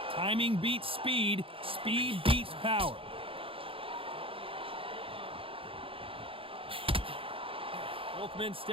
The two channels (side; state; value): left; late; 0.26 ms